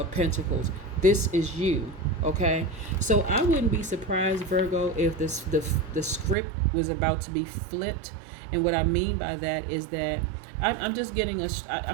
Pentacles. This is you. Okay? So I wouldn't be surprised, Virgo, if the script was about to be flipped. And what I mean by that is that I'm just getting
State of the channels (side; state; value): left; drops out; at 6.4 s